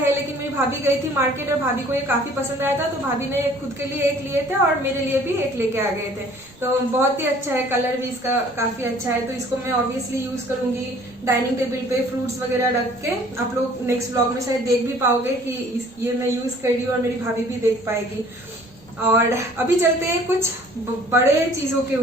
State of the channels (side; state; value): right; noise; rumble, 28 dB below the sound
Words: लेकिन मेरी भाभी गई थी मार्केट और भाभी को ये काफी पसंद आया था, तो भाभी ने खुद के लिए एक लिए थे और मेरे लिए भी एक लेके आ गए थे। तो बहुत ही अच्छा है, कलर भी इसका काफी अच्छा है। तो इसको मैं ऑब्वियसली यूज करूंगी डाइनिंग टेबल पे फ्रूट्स वगैरह रख के। आप लोग नेक्स्ट ब्लॉग में शायद देख भी पाओगे कि ये मैं यूज कर रही हूँ और मेरी भाभी भी देख पाएगी। और अभी चलते हैं कुछ बड़े चीजों के